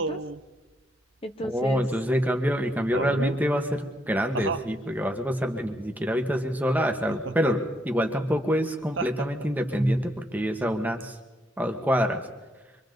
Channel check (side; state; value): both; normal; correlation 0.75